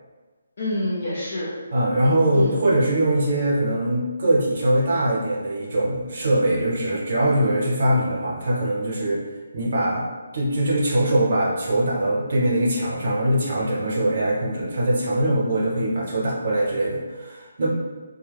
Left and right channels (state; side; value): inverted; both; correlation -0.82